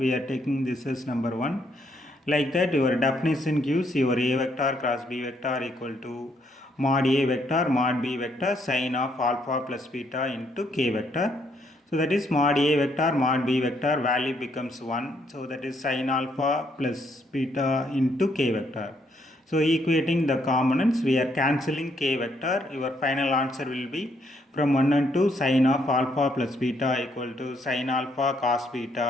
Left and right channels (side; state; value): both; normal; correlation 0.72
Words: are taking this as number 1. Like that, your definition gives your A vector cross B vector equal to mod A vector mod B vector sin of alpha plus beta into K vector. So that is mod A vector mod B vector value becomes 1. So that is sin alpha plus beta into K vector. So equating the components, we are cancelling K vector. Your final answer will be from 1 and 2 sin of alpha plus beta equal to sin alpha cos